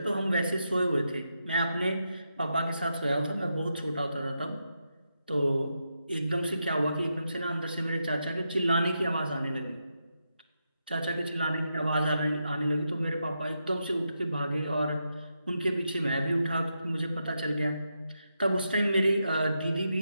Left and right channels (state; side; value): inverted; both; correlation -0.85